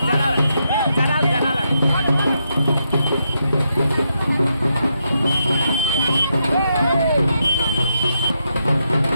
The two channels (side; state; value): both; inverted; correlation -0.82